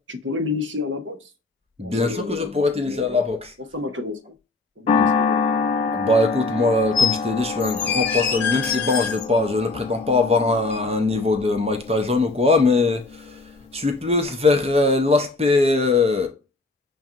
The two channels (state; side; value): quieter; right; 3.2 dB